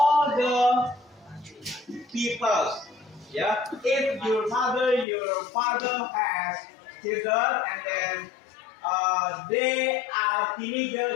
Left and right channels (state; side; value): drops out; right; at 5.1 s